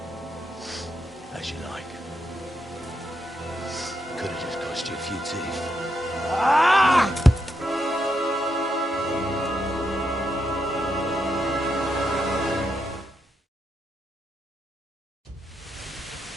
As you like. Could have just cost you a few teeth. Ah!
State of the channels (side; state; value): both; normal; correlation 0.82